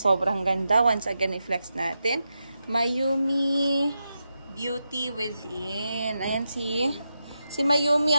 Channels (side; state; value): both; inverted; correlation -0.88